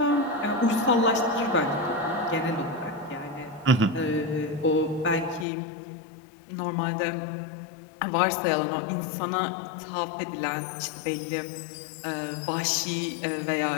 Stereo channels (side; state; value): right; drops out; at 5.5 s